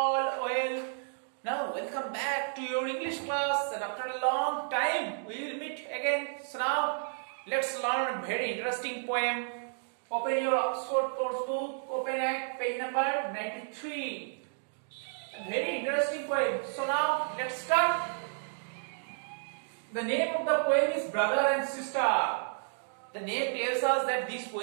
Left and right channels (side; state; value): left; silent; digital silence